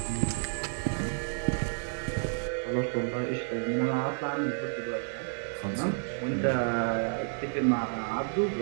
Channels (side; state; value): left; silent; digital silence